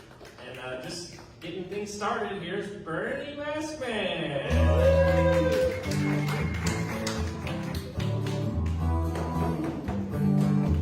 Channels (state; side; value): identical; both; correlation 1.00